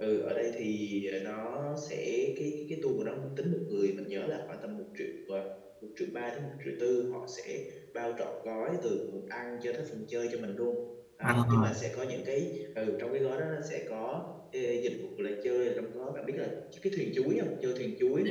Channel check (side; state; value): both; identical; correlation 1.00